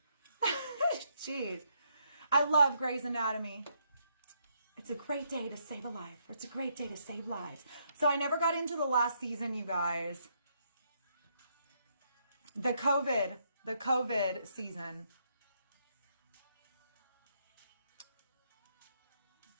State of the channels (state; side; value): inverted; both; correlation -0.74